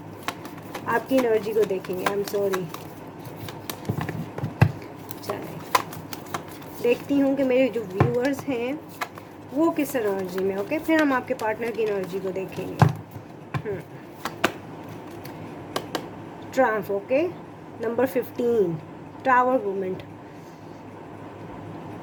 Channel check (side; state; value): both; identical; correlation 1.00